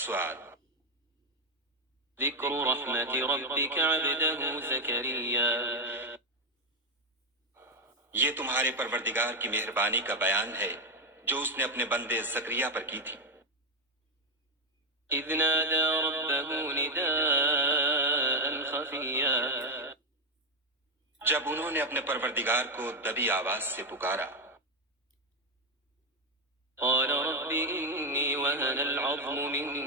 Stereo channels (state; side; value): normal; both; correlation 0.07